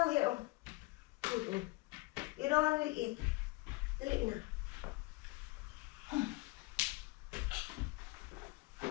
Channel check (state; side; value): quieter; right; 22.8 dB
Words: here. Oh. You don't want to eat. Dali na.